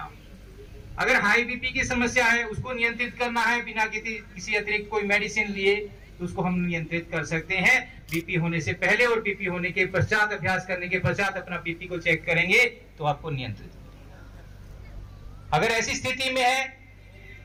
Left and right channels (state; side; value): identical; both; correlation 1.00